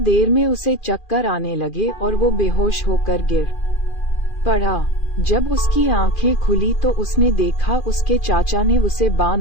में उसे चक्कर आने लगे और वो बेहोश होकर गिर पड़ा। जब उसकी आंखें खुली तो उसने देखा उसके चाचा ने उसे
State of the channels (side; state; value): right; late; 2.4 ms